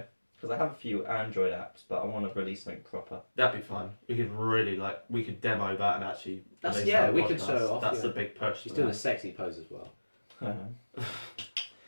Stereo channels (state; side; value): inverted; both; correlation -1.00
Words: Because I have a few Android apps, but I want to release something proper. That'd be fun. We could really we could demo that and actually. That's- release yeah, that we could podcast. show it off, That's yeah. the big push. She's for doing a that. sexy pose as well.